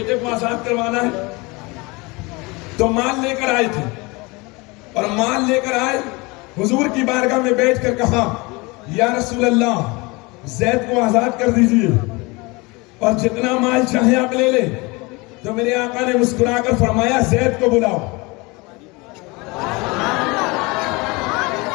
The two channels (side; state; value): right; quieter; 25.5 dB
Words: کو آزاد کروانا ہے تو مال لے کر آئے تھے، اور مال لے کر آئے حضور کی بارگاہ میں بیٹھ کر کہا یا رسول اللہ زید کو آزاد کر دیجئے اور جتنا مال چاہے آپ لے لیں۔ تو میرے آقا نے مسکرا کر فرمایا زید کو بلاؤ۔